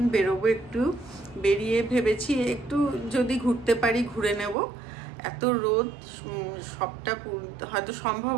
বেরোবো, একটু বেরিয়ে ভেবেছি একটু যদি ঘুরতে পারি ঘুরে নেব। এত রোদ, সবটা হয়তো সম্ভব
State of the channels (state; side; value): drops out; left; at 4.5 s